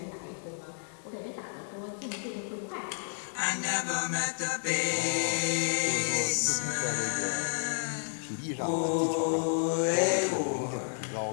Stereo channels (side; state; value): right; silent; 57 dB below the other